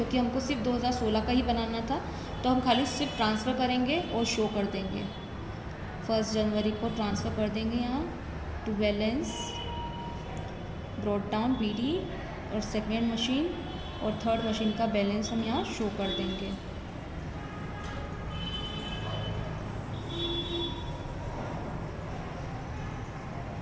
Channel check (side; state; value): both; identical; correlation 1.00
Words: हमको सिर्फ 2016 का ही बनाना था, तो हम खाली सिर्फ ट्रांसफ़र करेंगे और शो कर देंगे। 1 जनवरी को ट्रांसफ़र कर देंगे यहाँ to balance brought down BD, और सेकेंड मशीन और थर्ड मशीन का बैलेंस हम यहाँ शो कर देंगे।